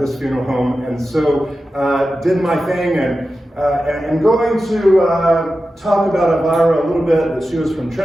funeral home. And so did my thing, and going to talk about Elvira a little bit, that she was from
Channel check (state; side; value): normal; both; correlation 0.92